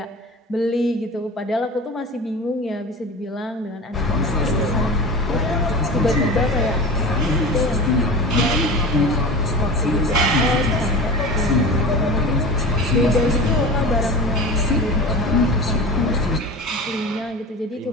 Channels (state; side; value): normal; both; correlation 0.32